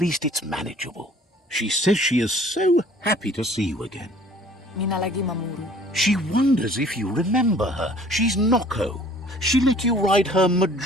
it's manageable. She says she is so happy to see you again. Minalagi mamuru. She wonders if you remember her. She's Noko. She let you ride her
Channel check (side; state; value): both; normal; correlation 0.53